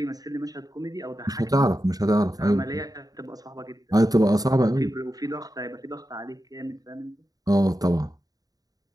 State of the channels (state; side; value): late; left; 0.18 ms